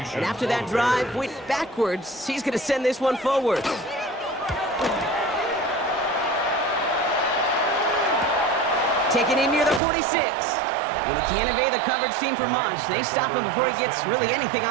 And after that drive went backwards, he's going to send this one forward. Taking in near the 46. And he can't evade the coverage team for much. They stop him before he gets really anything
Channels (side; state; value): left; drops out; at 9.8 s